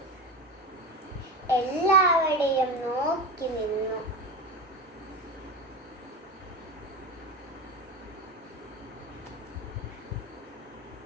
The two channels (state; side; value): normal; both; correlation 0.24